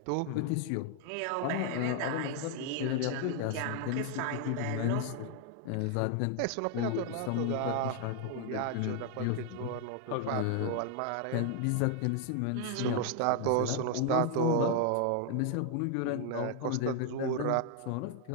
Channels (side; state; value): both; different; correlation 0.00